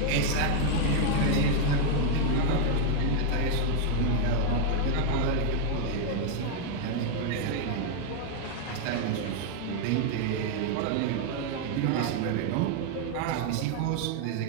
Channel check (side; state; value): both; different; correlation 0.00